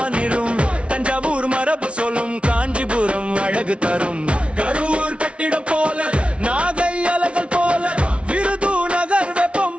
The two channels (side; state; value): left; late; 0.060 ms